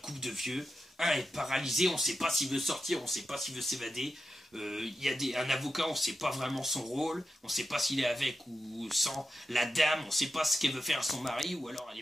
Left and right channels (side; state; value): both; normal; correlation 0.89